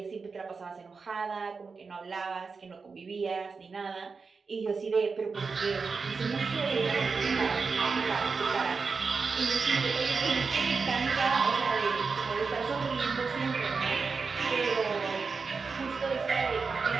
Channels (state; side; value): quieter; left; 4.8 dB